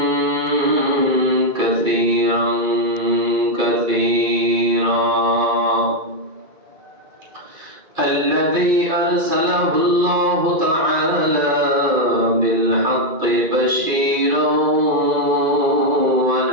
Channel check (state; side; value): late; left; 2.5 ms